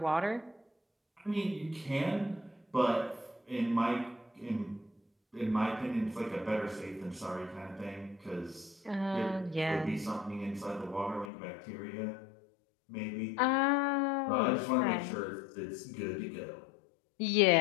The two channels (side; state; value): right; drops out; at 11.3 s